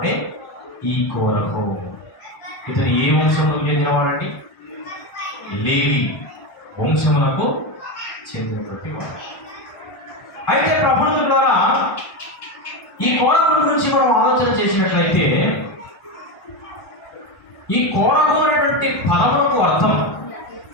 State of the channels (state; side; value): late; right; 1.1 ms